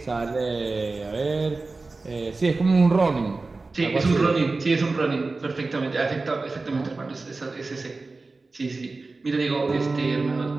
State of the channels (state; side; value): quieter; left; 3.6 dB